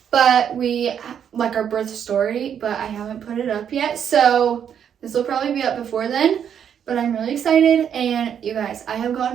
but our birth story, but I haven't put it up yet. So this will probably be up before then, but I'm really excited. And you guys, I have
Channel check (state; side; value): quieter; left; 8.5 dB